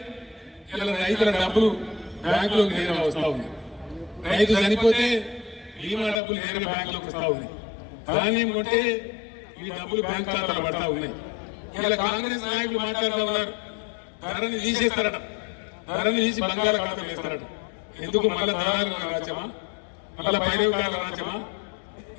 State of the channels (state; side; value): drops out; right; at 6.2 s